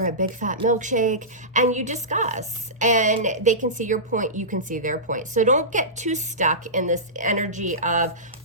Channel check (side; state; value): both; normal; correlation -0.19